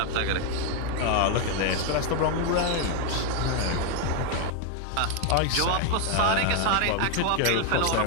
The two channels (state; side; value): different; both; correlation 0.01